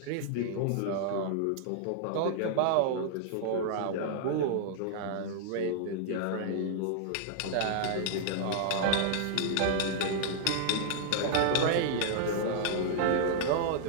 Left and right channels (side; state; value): both; different; correlation -0.01